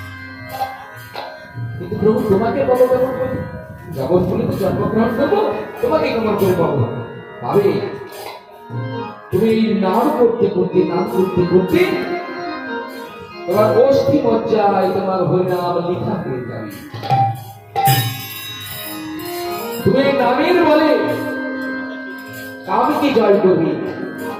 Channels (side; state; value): both; identical; correlation 1.00